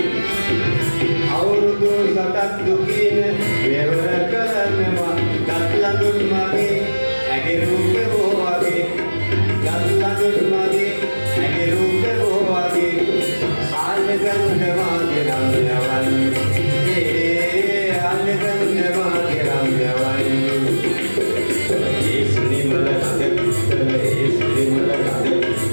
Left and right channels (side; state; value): both; inverted; correlation -1.00